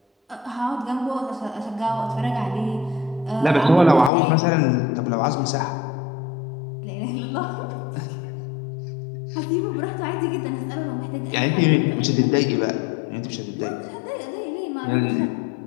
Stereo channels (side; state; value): right; drops out; at 4.1 s